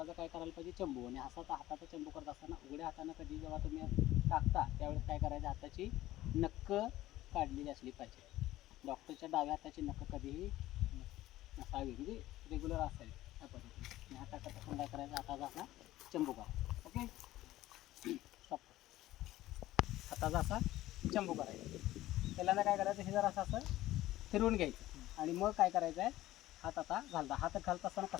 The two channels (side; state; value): right; quieter; 15.6 dB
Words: काय करायला पाहिजे, चंबू. आणि हाताचा चंबू करत असताना उघड्या हातानं कधी जेव्हा तुम्ही टाकता त्यावेळेस काय करायचं, हाताची नक्क काढलेली असली पाहिजे. डॉक्टरच्या डाव्या हाताची नक्क कधीही नसावी, म्हणजे रेग्युलर असावी त्या पद्धतीने. आणि हाताचा पण काय करायचं, हाताचा असा चंबू करा. Okay, stop. हाताचा असा चंबू करायचा. पहिल्यांदा काय करायचं, हे जर असं फिरवून घ्यायचं आणि मग काय करायचं आहे, हात आता घालता. हात घालत असताना